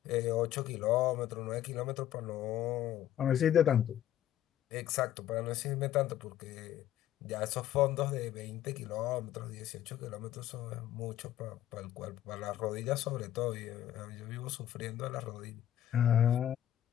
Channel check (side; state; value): right; quieter; 11.7 dB